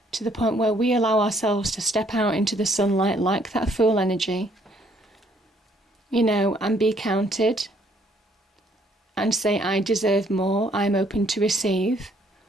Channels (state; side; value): normal; both; correlation 0.65